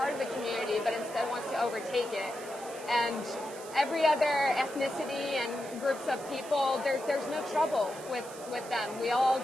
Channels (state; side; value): noise; right; hiss, 16 dB below the sound